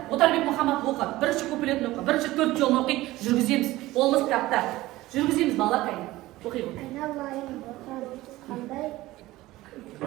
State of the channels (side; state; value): left; quieter; 17.7 dB